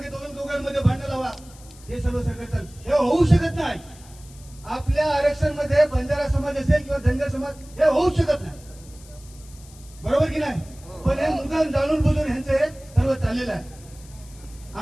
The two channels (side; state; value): left; noise; hiss, 23 dB below the sound